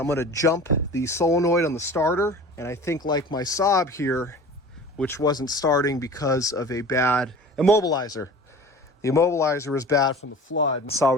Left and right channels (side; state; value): both; normal; correlation 0.40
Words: gonna jump the solenoid on the starter. And I think like my Saab here, which wasn't starting because of a bad immobilizer. The immobilizer was bad from the flood. So I